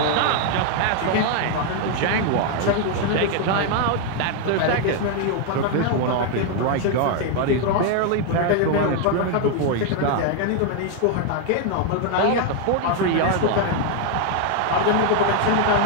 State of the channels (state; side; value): different; both; correlation 0.00